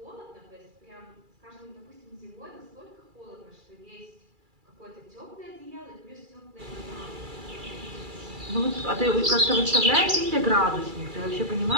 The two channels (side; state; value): left; late; 2.3 ms